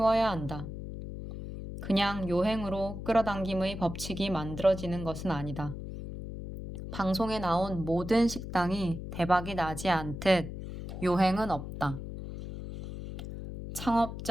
한다. 그냥 요행으로 끌어당김의 법칙이 만들어지는 것은 아니다. 방송에 나온 모든 식당이 대박이 나지 않듯 요행은 없다. 창업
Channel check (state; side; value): noise; left; hum, 8 dB below the sound